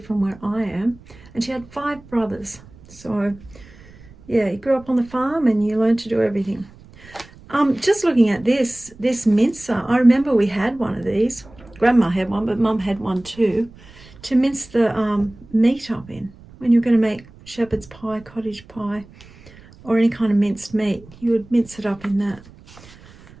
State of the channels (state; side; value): noise; right; rumble, 23 dB below the sound